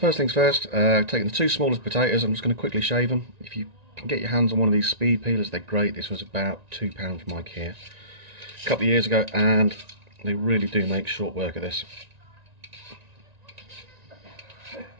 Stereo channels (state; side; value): late; left; 1.9 ms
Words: things first, taking the two smallest potatoes, I'm just going to quickly shave them. If you can get your hands on one of these speed peelers, they're great. This was about £2 from IKEA a couple of years ago, and they really do make short work of this. So